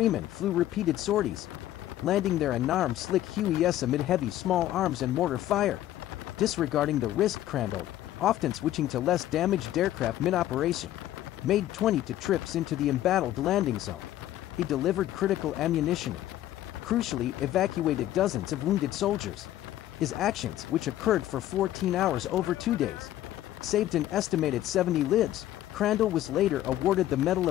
flew repeated sorties, landing their unarmed slick Hueys amid heavy small arms and mortar fire. Disregarding the risk, Crandall, often switching to less damaged aircraft mid-operation, made 22 trips into the embattled landing zone. He delivered critical ammunition and, crucially, evacuated dozens of wounded soldiers. His actions, which occurred for 14 hours over 2 days, saved an estimated 70 lives. Crandall was later awarded the Medal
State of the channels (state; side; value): quieter; right; 13.4 dB